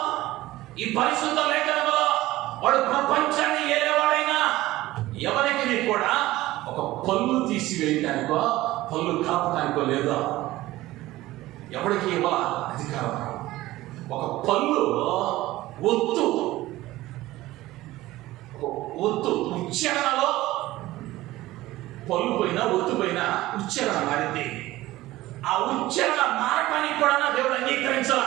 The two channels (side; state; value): left; quieter; 17.1 dB